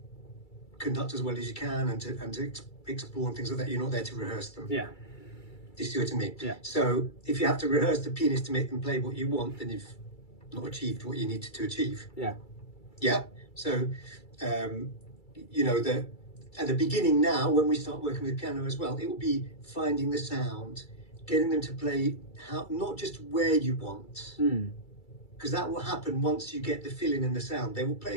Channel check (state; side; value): late; right; 2.3 ms